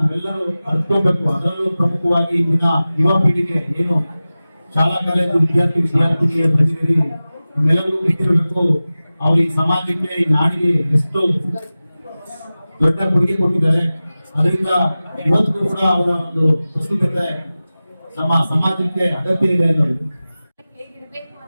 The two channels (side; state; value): both; inverted; correlation -0.96